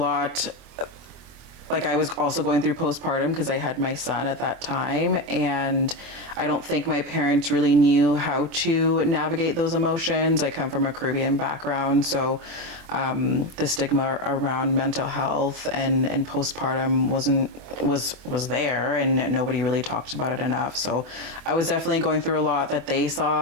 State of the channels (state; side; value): late; left; 24 ms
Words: like I was also going through postpartum because I had my son at that time, and I don't think my parents really knew how to navigate those emotions. I come from a Caribbean background, so the stigma around mental health and postpartum was there, and nobody really talked about it enough. So I was definitely going through a lot that they